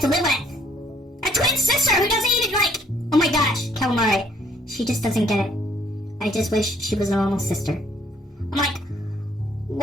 to live with! A twin sister who doesn't even like... Oh my gosh, Calamari. She just doesn't get it. I just wish she was a normal sister. I'm like,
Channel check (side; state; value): both; normal; correlation 0.65